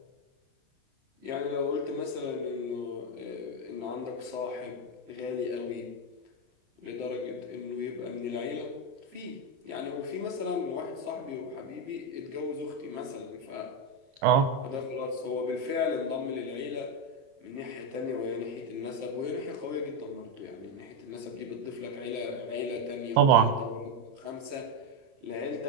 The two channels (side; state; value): left; late; 30 ms